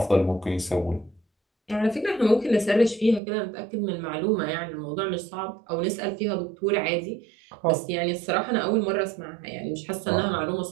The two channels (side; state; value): left; drops out; at 3.2 s